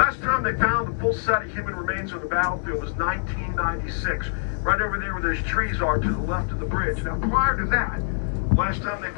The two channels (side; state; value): right; silent; 62 dB below the other